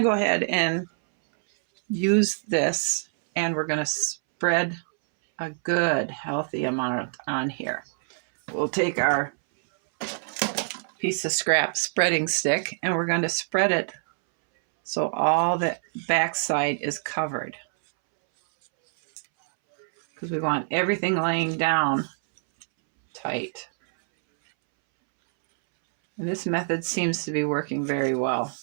go ahead and use this, and we're going to spread a good healthy amount on here. We'll take our piece of scrap spreading stick, and we're going to spread it so all the backside is covered, because we want everything laying down tight. And this method seems to be working very well.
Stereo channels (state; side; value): silent; left; 62 dB below the other